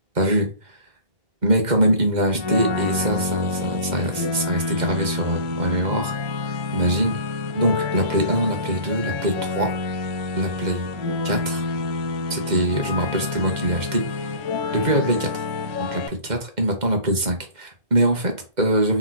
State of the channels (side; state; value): left; late; 2.1 ms